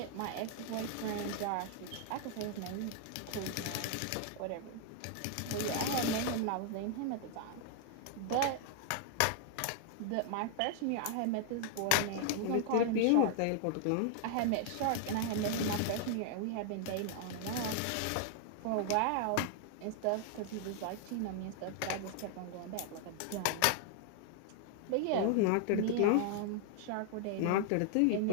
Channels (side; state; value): both; different; correlation 0.00